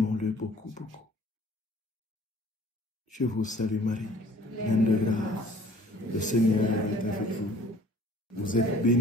beaucoup, beaucoup. Je vous salue Marie, pleine de grâce. Le Seigneur est avec vous. Vous êtes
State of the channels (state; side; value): normal; both; correlation 0.53